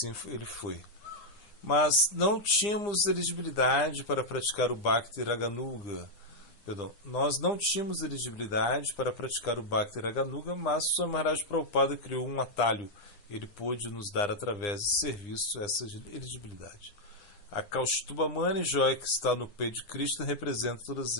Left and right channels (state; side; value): late; right; 9.8 ms